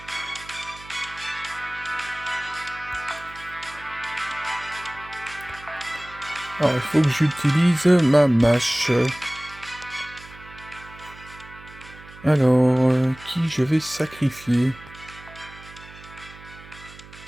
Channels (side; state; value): right; noise; hum, 19 dB below the sound